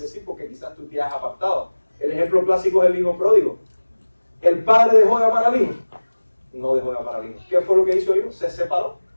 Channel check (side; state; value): both; inverted; correlation -1.00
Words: porque quizás tú te has apartado. El ejemplo clásico es el hijo pródigo. ¿El padre dejó de amar al hijo? No dejó de amar al hijo. ¿Qué fue lo que hizo el hijo? Se separó.